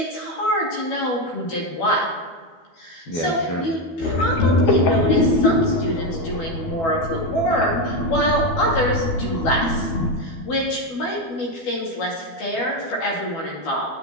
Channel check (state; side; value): late; right; 12 ms